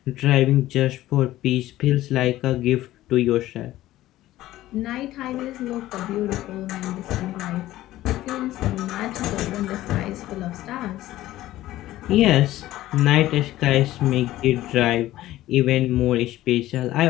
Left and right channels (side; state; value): right; quieter; 15.3 dB